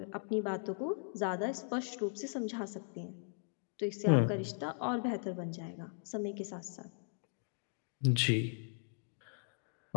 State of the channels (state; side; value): silent; right; digital silence